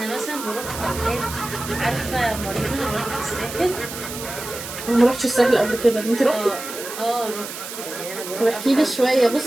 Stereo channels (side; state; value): right; noise; hiss, 10 dB below the sound